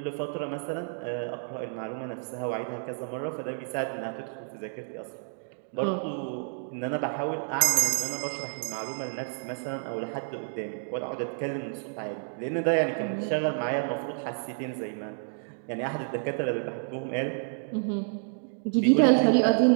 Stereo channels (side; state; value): left; silent; digital silence